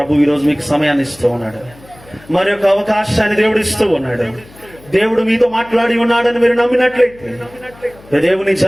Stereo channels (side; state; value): left; noise; hum, 24 dB below the sound